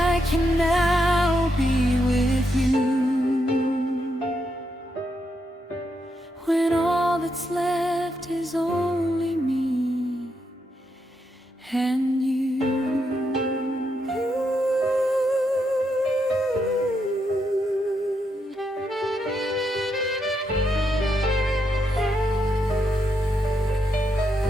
can now be with you, when all that's left is only me and you.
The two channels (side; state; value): both; normal; correlation 0.81